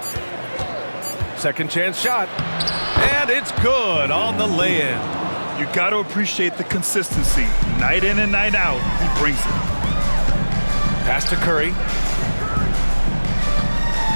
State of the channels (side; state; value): both; inverted; correlation -1.00